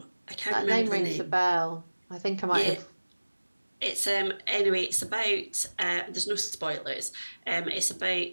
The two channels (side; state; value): both; inverted; correlation -1.00